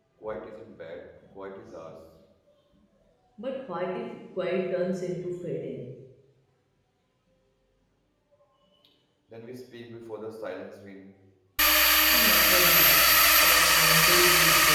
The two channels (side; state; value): both; identical; correlation 1.00